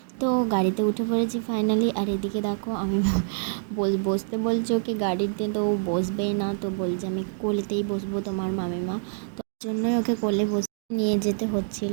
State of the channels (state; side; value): silent; left; digital silence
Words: তো গাড়িতে উঠে পড়েছি ফাইনালি। আর এদিকে দেখো আমি বসতে বলছে ওকে গাড়িতে, তো ও বসবেই না, তো বলছে আমি কোলেতেই বসবো তোমার মামিমা, তো তার জন্যই ওকে কোলে বসে নিয়ে যেতে